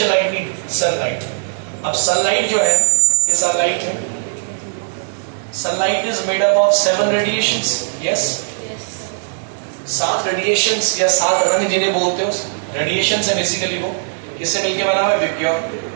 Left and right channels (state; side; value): silent; left; digital silence